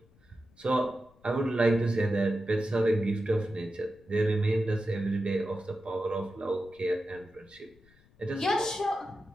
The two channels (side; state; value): left; noise; rumble, 29 dB below the sound